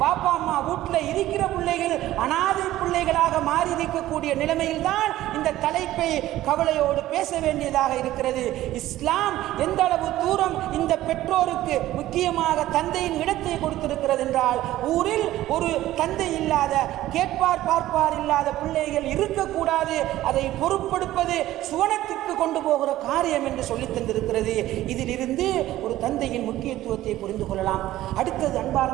பாப்பா அம்மா வீட்டில் இருக்கிற பிள்ளைகள் அனாதை பிள்ளைகளாக மாறி இருக்கக்கூடிய நிலைமையில் தான் இந்த தலைப்பை கவலையோடு பேச வேண்டியதாக இருக்கிறது. இஸ்லாம் எந்த அளவு தூரம் இந்த பெற்றோருக்கு முக்கியமாக தந்தையின் இடத்தை கொடுத்திருக்கிறது என்றால், ஊரில் ஒரு தந்தை இல்லாத கேட்பார் பார்ப்பார் இல்லாத பிள்ளைகள் இருக்கக்கூடாது. அதை பொறுப்பெடுப்பது சுவனத்திற்கு கொண்டு போகிற காரியம் என்று சொல்லித் தந்திருக்கிறது. இதிலிருந்து ஒரு தந்தையின் முக்கியத்துவத்தை புரிந்து கொள்ளலாம். அடுத்தது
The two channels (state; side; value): quieter; left; 14.8 dB